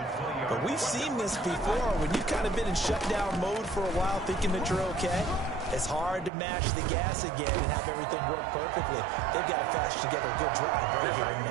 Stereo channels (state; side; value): drops out; left; at 6.3 s